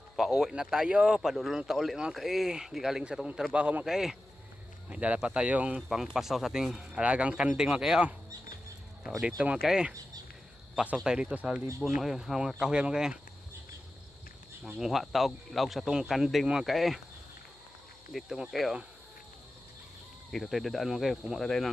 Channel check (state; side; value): noise; left; hum, 29 dB below the sound